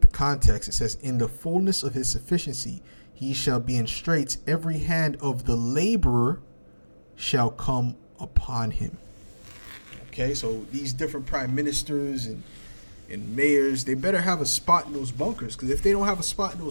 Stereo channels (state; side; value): inverted; both; correlation -1.00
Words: the context, it says, "In the fullness of his sufficiency, he shall be in straits. Every hand of the laborer shall come upon him." Okay, so these different prime ministers and mayors, they better have a spot in those bunkers, because if they don't have a spot in